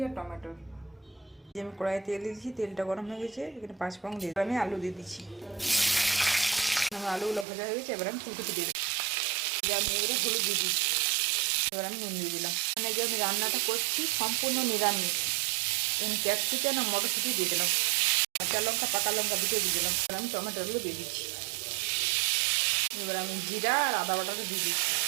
আর টমেটো। আমি কড়াইয়ে তেল দিয়েছি, তেলটা গরম হয়ে গেছে। এখানে 5 ফোড়ন দিয়ে আমি আলু দিয়ে দিচ্ছি। আমার আলুগুলো ভাজা হয়ে গেছে, এবার আমি ফুলকপি দিয়ে দিচ্ছি। আমি এবারে হলুদ দিয়ে দিচ্ছি, এবার আমি নুন দিয়ে দিলাম। মানে যে আমি রান্নাটা করছি সম্পূর্ণ নিরামিষ। আমি ক্যাপসিকাম আর মটরশুঁটি দিয়ে দিলাম, কাঁচা লঙ্কা, পাকা লঙ্কা দুটো দিয়ে দিলাম। এবার আমি টমেটোগুলো দিয়ে দিচ্ছি। এবার আমি জিরা আর আদা বাটাটা দিয়ে দিচ্ছি।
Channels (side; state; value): left; drops out; at 7.5 s